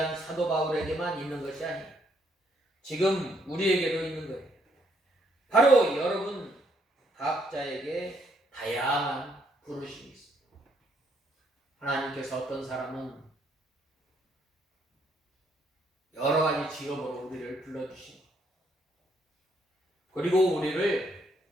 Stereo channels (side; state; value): both; normal; correlation 0.71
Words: 사도 바울에게만 있는 것이 아니에요. 지금 우리에게도 있는 거예요. 바로 여러분 각자에게 다양한 부르심이 있습니다. 하나님께서 어떤 사람은 여러 가지 직업으로 우리를 불러주신, 그리고 우리를